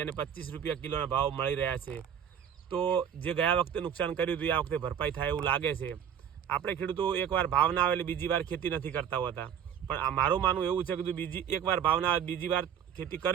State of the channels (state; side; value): quieter; left; 8.7 dB